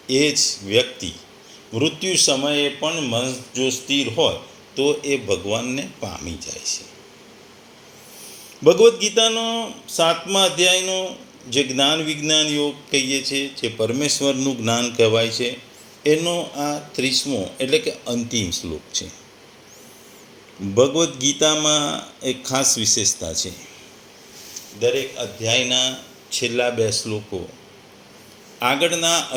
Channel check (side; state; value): both; identical; correlation 1.00